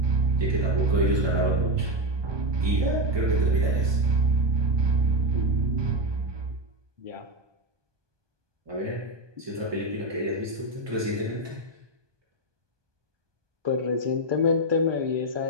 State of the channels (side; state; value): left; late; 1.2 ms